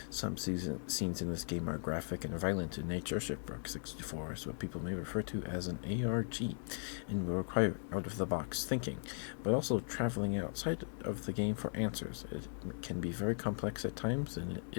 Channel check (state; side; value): silent; right; digital silence